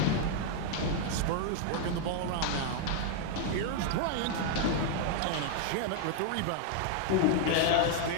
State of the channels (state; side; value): different; both; correlation 0.00